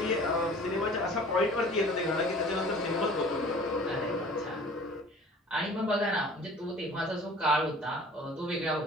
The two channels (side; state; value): both; normal; correlation 0.46